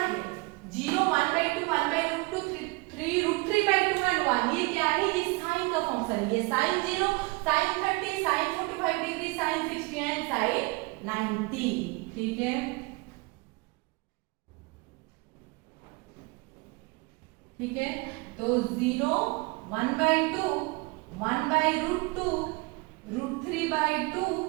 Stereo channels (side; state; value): left; quieter; 26.1 dB